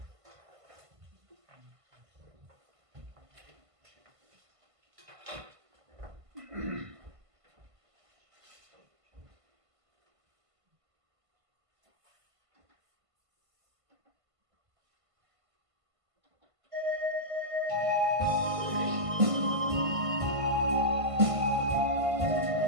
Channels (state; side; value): late; left; 1.5 ms